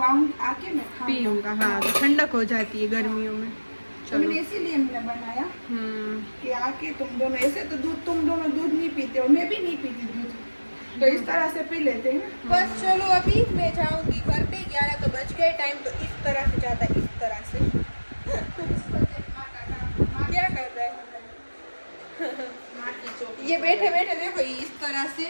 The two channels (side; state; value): both; inverted; correlation -1.00